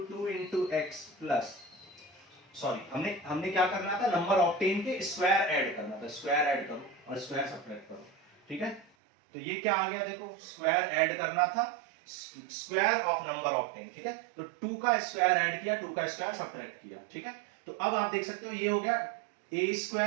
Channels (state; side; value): drops out; left; at 8.9 s